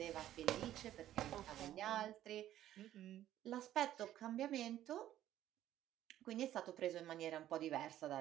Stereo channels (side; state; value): left; quieter; 12.7 dB